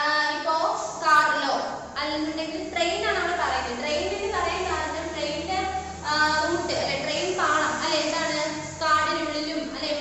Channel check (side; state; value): both; identical; correlation 1.00